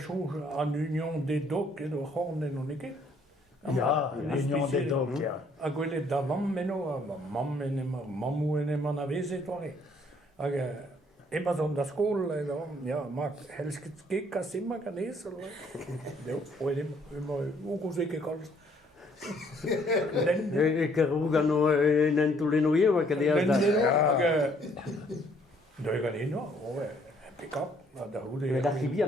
en union des docs et de horne non ikke. ja, l'Union des Docs, ja. A gwele da mam meno, mam enema, mamu enema na vese tore. Immer so da skol, ja, mag helst gekka simma kan es eller. Jo, og immer ugo sikke kallt. Que rugano en Tulino ma che dia da. Det kan ind og pick up, og der hude. Da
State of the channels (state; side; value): normal; both; correlation 0.64